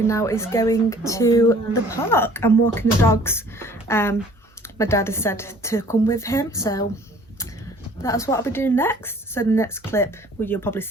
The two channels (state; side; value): normal; both; correlation 0.53